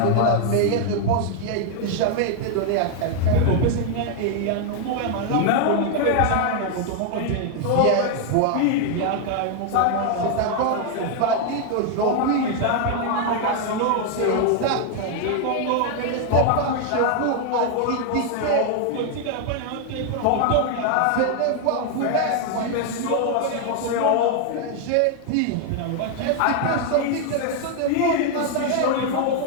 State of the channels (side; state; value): both; different; correlation 0.00